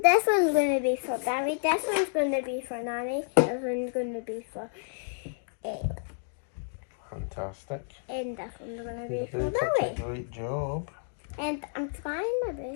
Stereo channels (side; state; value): right; silent; digital silence